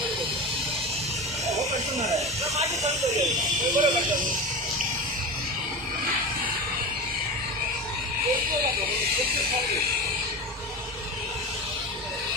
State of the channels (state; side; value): normal; both; correlation 0.27